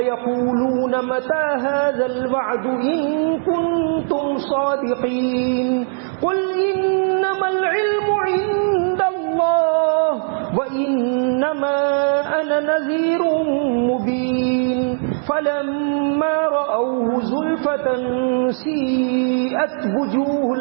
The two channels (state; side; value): silent; left; digital silence